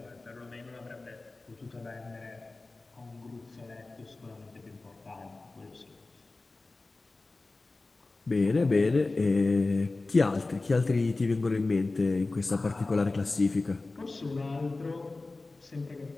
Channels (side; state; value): right; quieter; 3.4 dB